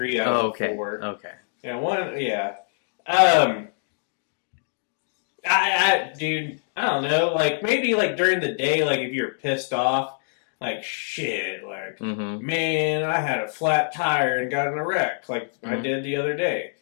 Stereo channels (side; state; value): right; silent; digital silence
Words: out of Okay. 4. Okay. Yeah, one. Yeah. Dude, I don't know. Like maybe like during the day, like if you're pissed off, like shit, like Mm-hmm. man, I had a flat tire and got in a wreck, like I Mhm. did the other day.